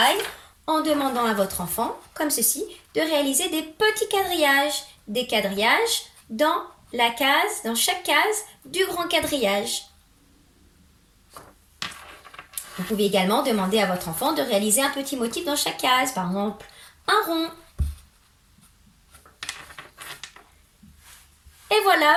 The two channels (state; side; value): identical; both; correlation 1.00